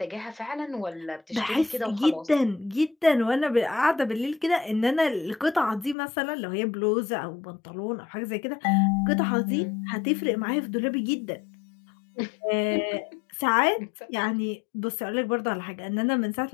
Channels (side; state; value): right; drops out; at 6.0 s